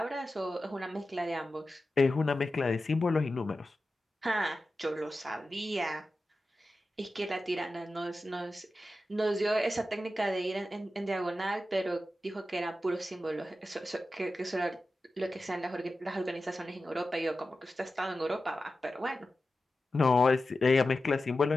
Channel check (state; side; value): normal; both; correlation 0.93